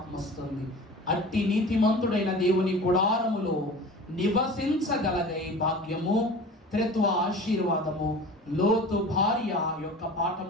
వస్తుంది. అట్టి నీతిమంతుడైన దేవుని గుడారములో నివసించగలగై భాగ్యము త్రిత్వ ఆశీర్వాదము లోతు భార్య యొక్క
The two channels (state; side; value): normal; both; correlation 0.39